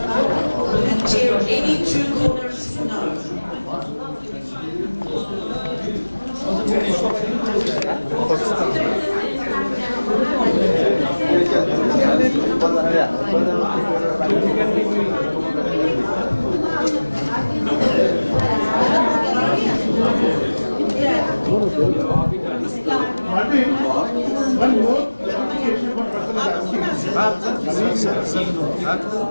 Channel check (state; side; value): inverted; both; correlation -1.00